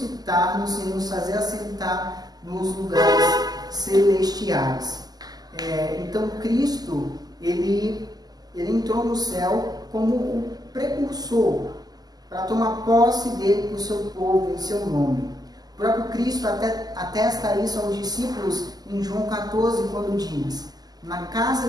e nos fazer assentar nos lugares celestiais. Então Cristo, ele entrou no céu como o precursor, para tomar posse dele para o seu povo, em seu nome. O próprio Cristo atesta isso aos discípulos em João 14, quando diz, na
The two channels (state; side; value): late; left; 0.19 ms